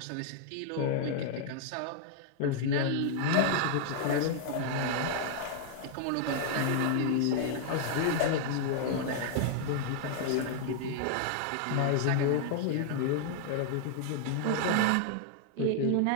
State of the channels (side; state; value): both; different; correlation -0.01